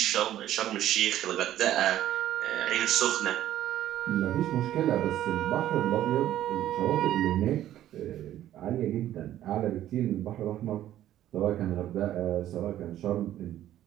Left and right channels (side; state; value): left; quieter; 12.6 dB